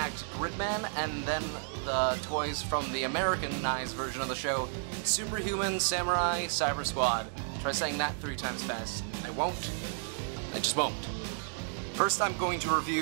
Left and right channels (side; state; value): left; silent; digital silence